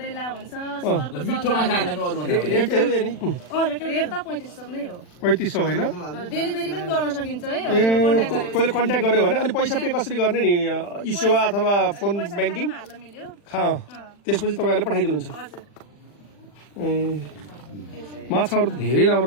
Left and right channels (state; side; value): late; right; 40 ms